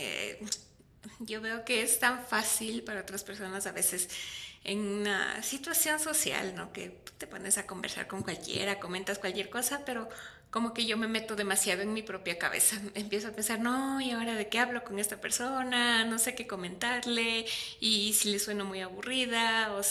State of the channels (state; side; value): identical; both; correlation 1.00